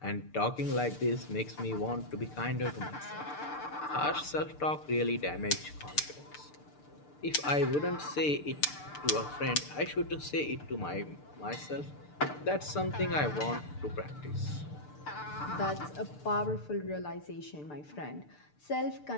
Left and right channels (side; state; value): right; late; 6.7 ms